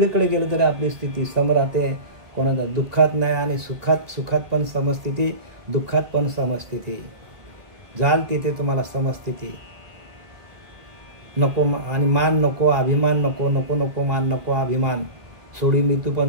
गेलं तरी आपली स्थिती सम राहते. कोणाला दुःखात नाही आणि सुखात पण समस्थिती, दुःखात पण समस्थिती. जाल तिथे तुम्हाला समस्थिती. नको आणि मान नको, अभिमान नको, नको नको मान नको अभिमान. सोडी मृत्यू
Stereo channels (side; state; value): left; late; 1.6 ms